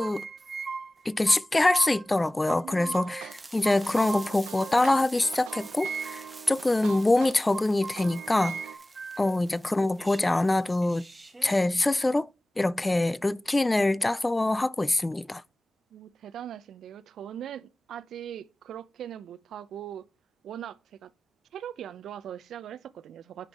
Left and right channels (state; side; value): normal; both; correlation 0.98